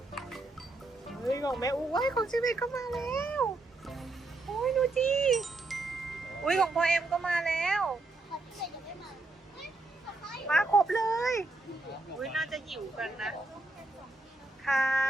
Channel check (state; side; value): quieter; left; 3.1 dB